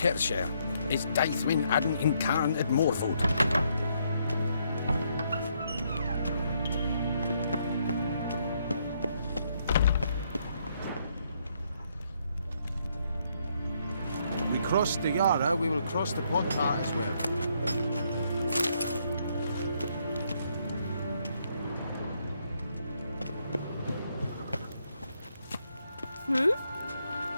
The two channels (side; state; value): both; inverted; correlation -0.73